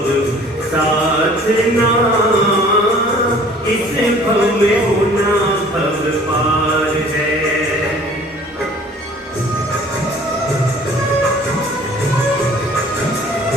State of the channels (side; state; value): both; normal; correlation 0.51